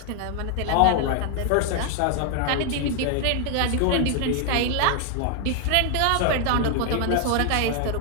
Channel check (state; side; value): different; both; correlation 0.00